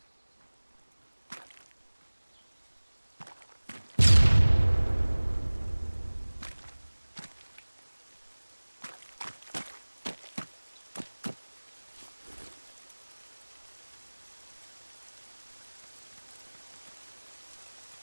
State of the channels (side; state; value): both; inverted; correlation -1.00